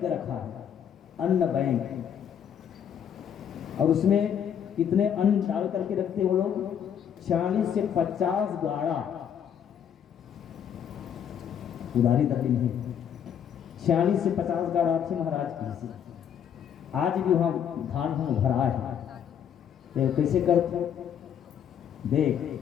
रखा है, अन्न बैंक, और उसमें कितने अन्न डाल करके रखते वो लोग, 40 से 50 गाड़ा। उधारी तक नहीं, 40 से 50 गाड़ा थे महाराज की। आज भी वहां धान हम भरा है, तो कैसे करते देख।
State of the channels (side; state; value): right; quieter; 8.7 dB